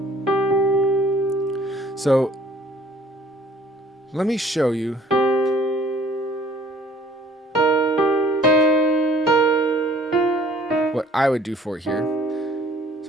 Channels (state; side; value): normal; both; correlation 0.55